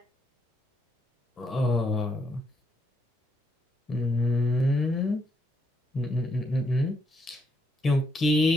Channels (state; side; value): normal; both; correlation 0.76